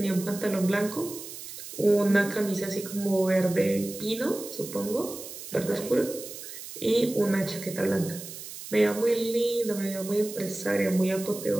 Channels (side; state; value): right; noise; hiss, 12 dB below the sound